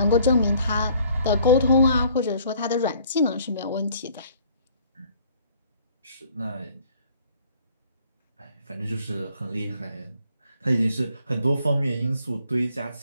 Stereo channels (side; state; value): both; inverted; correlation -0.58